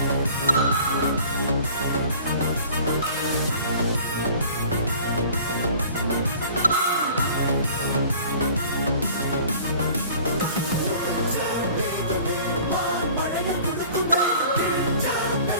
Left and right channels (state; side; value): inverted; both; correlation -0.47